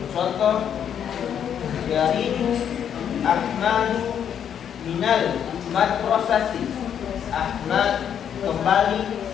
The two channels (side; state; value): right; quieter; 8.8 dB